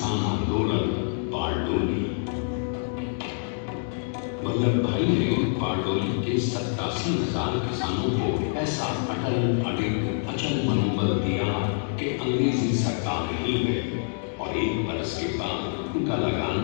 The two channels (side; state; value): right; silent; digital silence